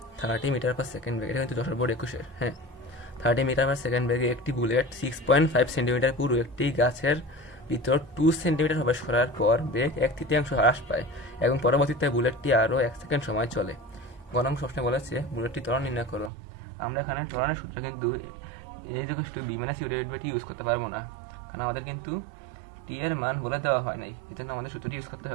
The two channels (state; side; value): drops out; left; at 16.3 s